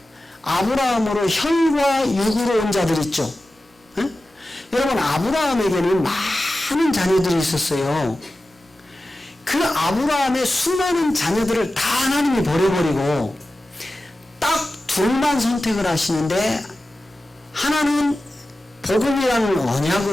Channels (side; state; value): both; normal; correlation 0.94